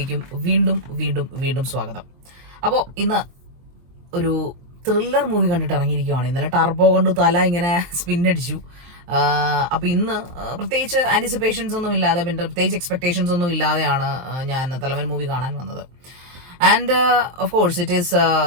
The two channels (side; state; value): left; late; 23 ms